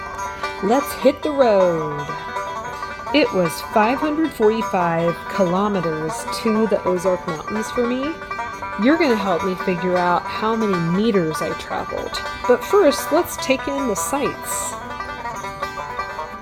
Let's hit the road. It was 545 kilometers to the Ozark Mountains for me. You're going to help me figure out how many meters I traveled. But first, let's take in the sights.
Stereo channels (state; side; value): identical; both; correlation 1.00